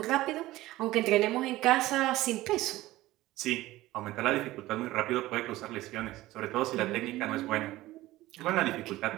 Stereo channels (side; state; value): left; quieter; 17.1 dB